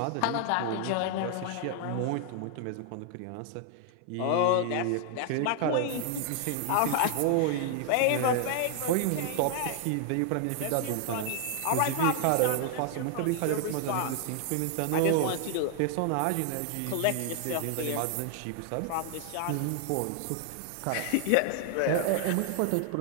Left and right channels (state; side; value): different; both; correlation 0.00